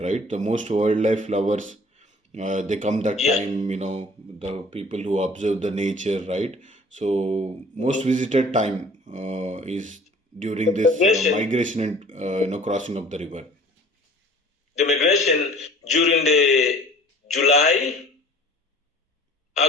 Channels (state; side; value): normal; both; correlation 0.50